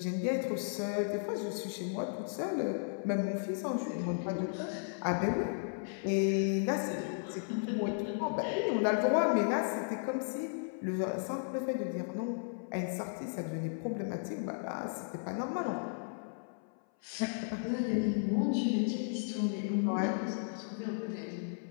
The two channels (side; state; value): right; silent; 55 dB below the other